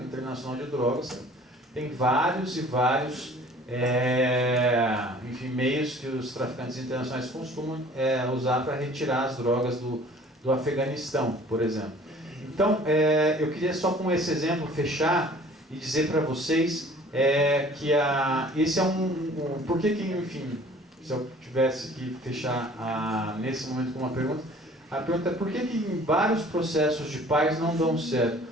internacional de drogas, tem vários e vários meios que os traficantes internacionais costumam usar para retirar as drogas do Afeganistão, por exemplo. Então, eu queria só com esse exemplo fechar e dizer para vocês que esse é por que, enfim, se eu tivesse que fechar nesse momento com uma pergunta, a pergunta é por que em vários processos de paz não dão certo?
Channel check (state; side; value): normal; both; correlation 0.50